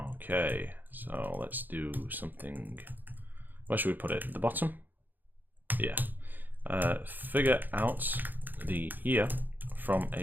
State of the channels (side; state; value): left; late; 0.087 ms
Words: so let's do something. Where should we put it? At the bottom? Yeah. Figure out the year from